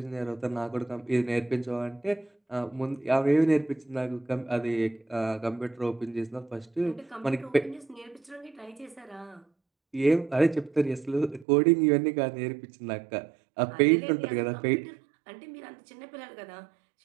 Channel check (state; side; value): drops out; left; at 11.5 s